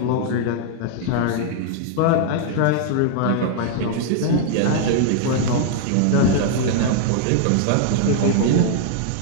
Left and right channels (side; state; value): both; different; correlation -0.01